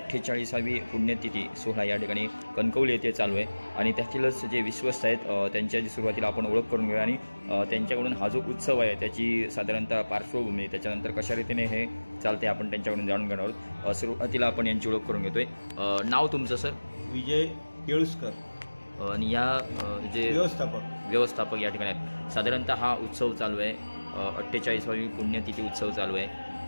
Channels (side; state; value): both; inverted; correlation -1.00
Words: पुण्यतिथी सोहळा या ठिकाणी कणकवली येथे चालू आहे आणि त्यातीलच जे विश्वस्त आहेत त्यांच्याची सुरुवातीला आपण ओळख करून घेऊया आणि त्यांच्याकडून हा जो उत्सव आहे त्याची साधारणतः पार्श्वभूमी त्याच्यानंतर कशा रीतीने हे चालते आपण त्यांच्याकडून जाणून घेणार आहोत। सुरुवातीला आपण यांची ओळख करून घेतोय। नाव तुमचं सर? विजय केळुसकर आणि या जे व्यवस्थापक या ठिकाणी आहेत। साधारणतः हा उत्सव चालू आहे 48वी पुण्यतिथी उत्सव चालू आहे।